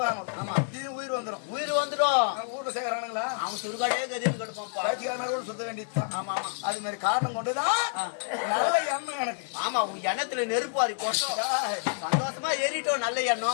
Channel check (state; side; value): silent; right; digital silence